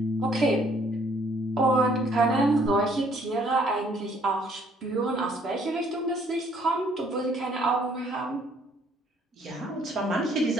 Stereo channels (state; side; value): normal; both; correlation 0.63